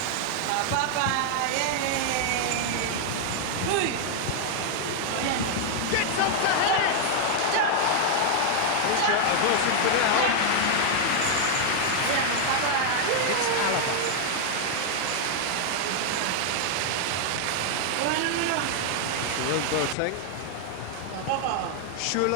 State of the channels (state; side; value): different; both; correlation 0.00